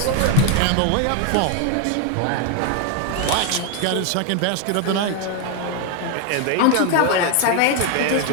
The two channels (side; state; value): both; different; correlation 0.01